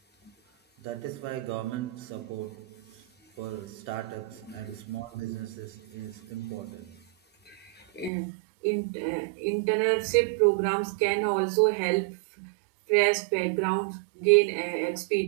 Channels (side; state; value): left; drops out; at 8.1 s